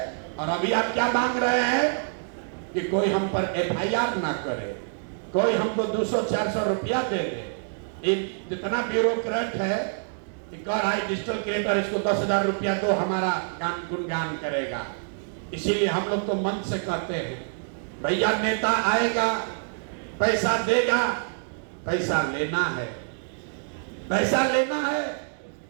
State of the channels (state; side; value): silent; left; digital silence